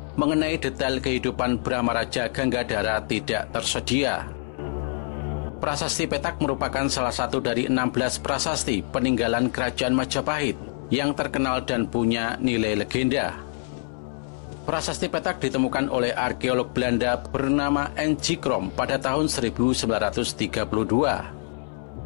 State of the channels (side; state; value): right; silent; digital silence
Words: mengenai detail kehidupan Brahmaraja Ganggadara tidak tersedia. Prasasti Petak merupakan salah satu dari 16 prasasti peninggalan Kerajaan Majapahit yang terkenal dan punya nilai legenda. Prasasti Petak ditemukan oleh arkeolog Belanda bernama N.G. Krom pada tahun 1932.